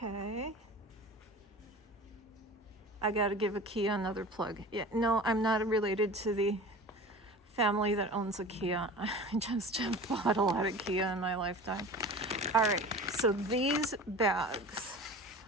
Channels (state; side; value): normal; both; correlation 0.37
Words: I gotta give IKEA another plug. Yeah, no, I'm not related to the family that owns IKEA. I just have bought a lot of IKEA in my lifetime. All right, so these bags,